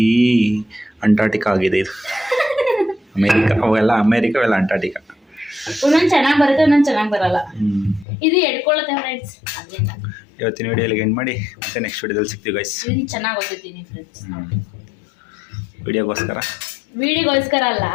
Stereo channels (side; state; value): right; drops out; at 8.1 s